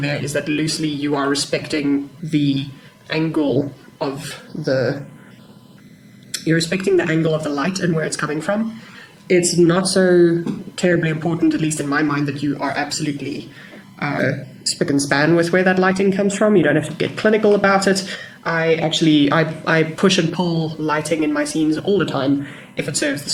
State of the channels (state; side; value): identical; both; correlation 1.00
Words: there is that loosely you are respecting the angle of you're respecting the angle of the light and where it's coming from. It's not so terribly important, at least in my mind, that you are absolutely spick and span with where that lighting comes from. You don't have to get clinical about it. I push and pull lighting in my scenes all the time if it serves the